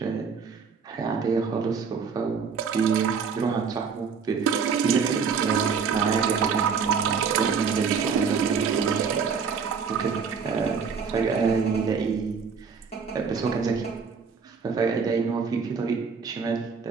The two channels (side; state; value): left; quieter; 5.9 dB